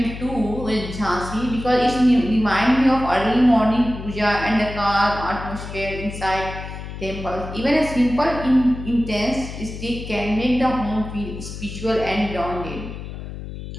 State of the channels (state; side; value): noise; left; hum, 10 dB below the sound